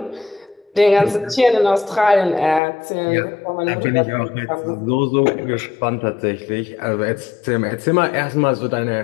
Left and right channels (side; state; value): right; drops out; at 2.6 s